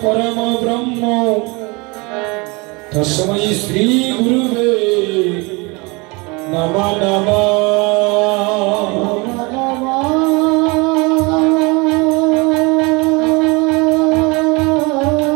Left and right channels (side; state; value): left; quieter; 27.4 dB